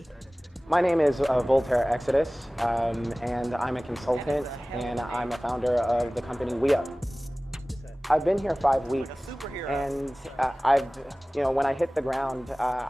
My name is Voltaire Exodus, and I'm a consultant, and I'm a founder of the company We Up. I've been here 5 weeks, and when I hit the ground,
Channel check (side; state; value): both; normal; correlation 0.98